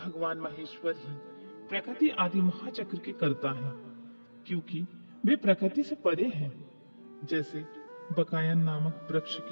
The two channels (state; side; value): inverted; both; correlation -1.00